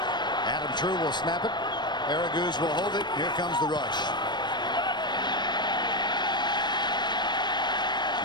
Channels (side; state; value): right; late; 0.21 ms